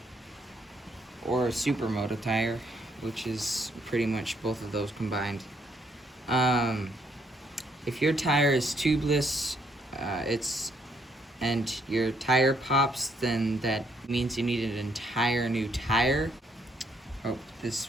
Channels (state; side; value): normal; both; correlation 0.71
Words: or a supermoto tire, which is pretty much both of those combined. If your tire is tubeless, and your tire pops, then that means you need an entire new tire. Hope this